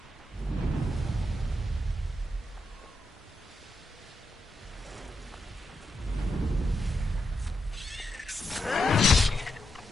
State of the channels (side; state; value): both; normal; correlation 0.84